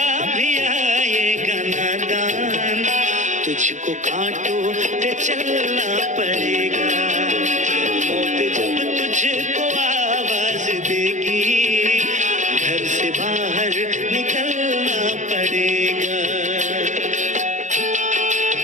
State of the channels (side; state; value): left; late; 0.35 ms